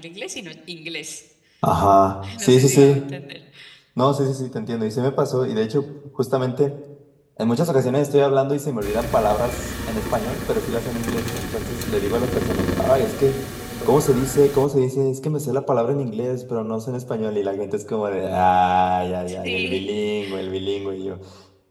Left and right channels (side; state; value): both; identical; correlation 1.00